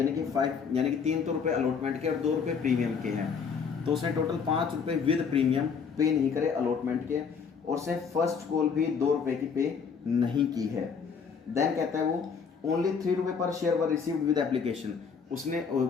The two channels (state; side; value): quieter; right; 6.0 dB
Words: कि 5, यानी कि 3 तो रुपये अलॉटमेंट के और 2 रुपये प्रीमियम के हैं। तो उसने टोटल 5 रुपये विद प्रीमियम पे नहीं करे अलॉटमेंट के, और उसने फर्स्ट कॉल भी 2 रुपये की पे नहीं की है। देन कहता है वो ओनली 3 रुपये पर share were received with application, उसने